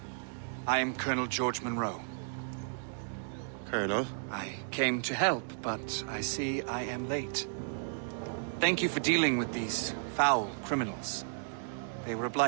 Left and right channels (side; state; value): left; silent; digital silence